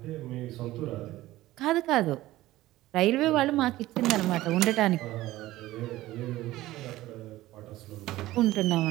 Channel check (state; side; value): quieter; left; 16.5 dB